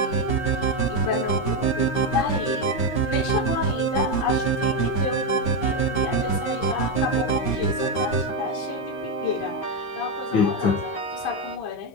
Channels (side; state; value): right; late; 15 ms